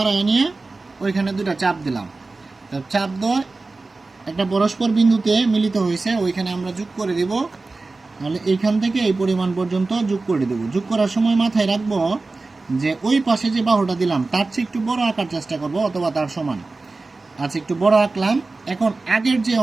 নিয়ে ওইখানে দুটা চাপ দিলাম। চাপ দিয়ে একটা পরস্পর বিন্দুতে মিলিত হয়েছে, ওইখানে আমরা যোগ করে দিব। তাহলে এইখান থেকে এই পরিমাণ পর্যন্ত যোগ করে দেব। যোগ করার সময় মাথায় রাখবো যে ওই পাশে যে বাহুটা দিলাম তার চেয়ে একটু বড় আঁকার চেষ্টা করব, অথবা তার সমান। আচ্ছা, একটু বড় আঁকলাম। এখন আগের যে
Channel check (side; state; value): left; quieter; 3.5 dB